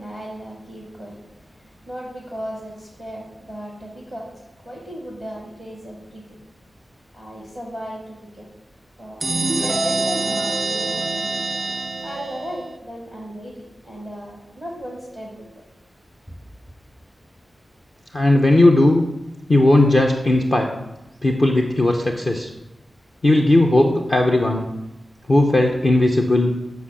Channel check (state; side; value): normal; both; correlation 0.93